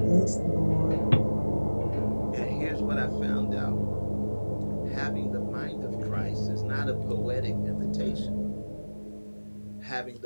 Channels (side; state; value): both; inverted; correlation -1.00